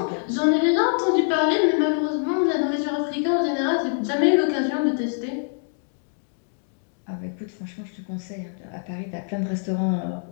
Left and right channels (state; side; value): silent; right; digital silence